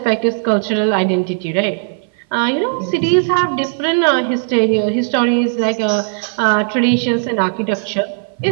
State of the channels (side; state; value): left; silent; 58 dB below the other